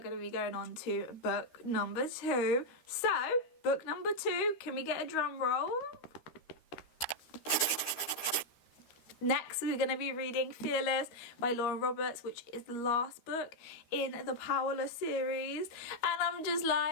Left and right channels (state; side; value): late; right; 13 ms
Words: to be going on to book number 2. So book number 2, can we get a drum roll? Next, we're going to be reading Fearless by Lauren Roberts, which is the last book in the Powerless series. And I'm just